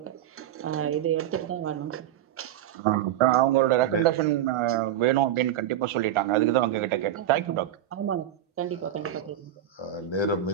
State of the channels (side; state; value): left; quieter; 11.4 dB